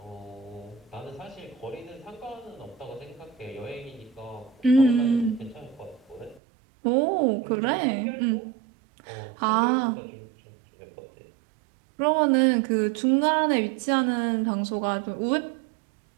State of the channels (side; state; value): left; drops out; at 6.4 s